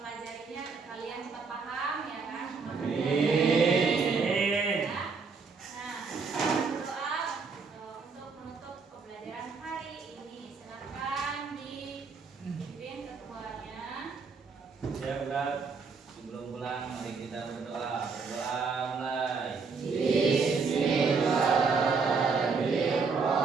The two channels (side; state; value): left; quieter; 4.9 dB